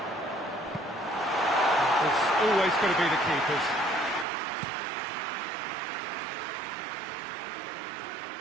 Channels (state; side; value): drops out; left; at 4.2 s